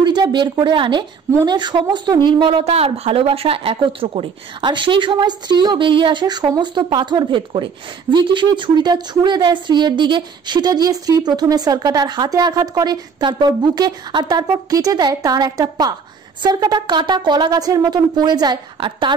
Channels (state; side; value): quieter; left; 5.8 dB